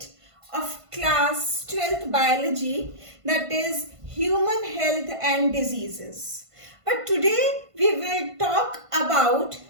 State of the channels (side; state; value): left; late; 1.5 ms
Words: of class 12th biology, that is human health and diseases. But today we will talk about